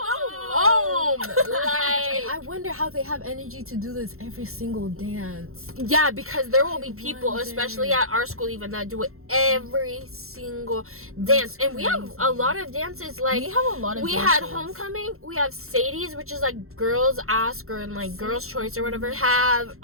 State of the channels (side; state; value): left; late; 0.62 ms